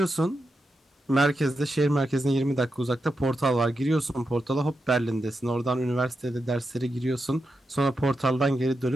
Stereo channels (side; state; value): both; normal; correlation 0.87